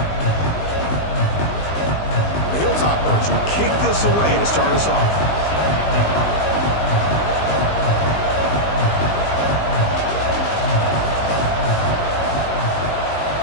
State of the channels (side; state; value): right; late; 19 ms